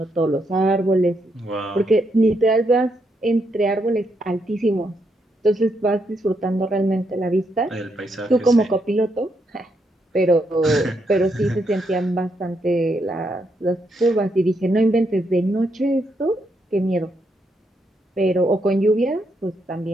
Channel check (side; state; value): both; normal; correlation 0.78